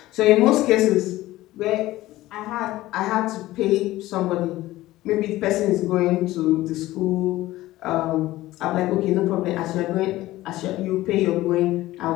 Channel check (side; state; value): right; quieter; 16.7 dB